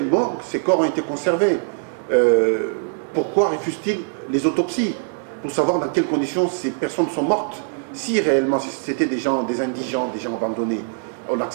morgue ces corps ont été conservés. Pourquoi refuse-t-il les autopsies? Pour savoir dans quelles conditions ces personnes sont mortes. Si réellement c'était des gens, des indigents, des gens abandonnés, on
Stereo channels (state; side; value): silent; left; digital silence